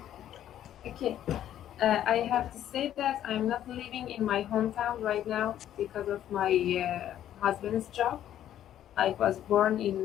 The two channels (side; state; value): right; quieter; 11.4 dB